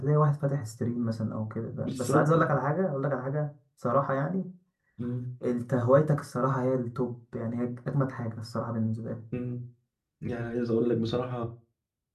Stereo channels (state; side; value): identical; both; correlation 1.00